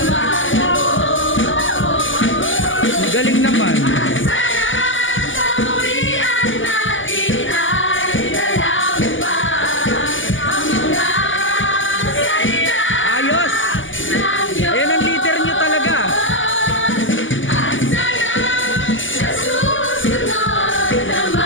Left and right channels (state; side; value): late; right; 0.57 ms